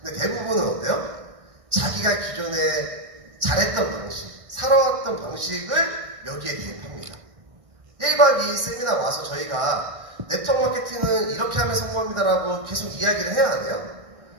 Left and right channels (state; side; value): late; left; 1.4 ms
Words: 근데 대부분은 어때요? 자기가 기존에 잘했던 방식, 살아왔던 방식을 여기에 대입합니다. 1박 2일 세미나 와서 저희가 네트워크 마케팅은 이렇게 하면 성공합니다라고 계속 이야기를 해야 하네요.